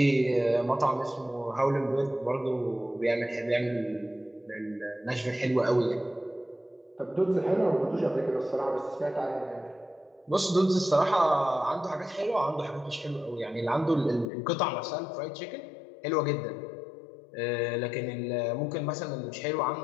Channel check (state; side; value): drops out; right; at 14.2 s